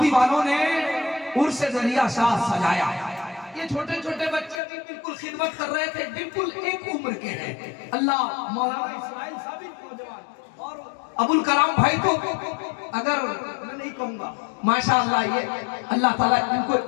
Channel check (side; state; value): right; drops out; at 4.6 s